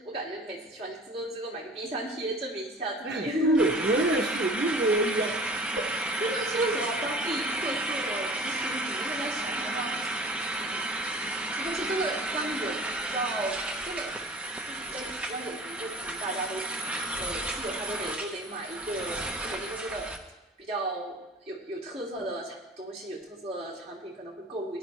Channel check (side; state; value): both; normal; correlation 0.43